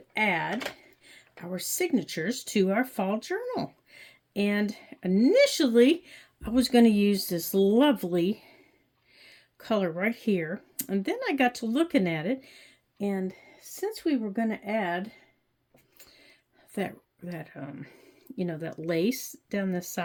add our signatures to our fall journal. And initially I was going to use this lovely color right here. And then I got to looking at it, and since we were going to add that lace down the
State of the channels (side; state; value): both; identical; correlation 1.00